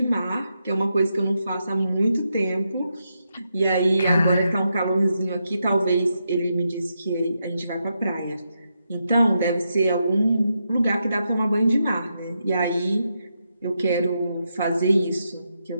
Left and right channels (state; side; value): inverted; both; correlation -0.84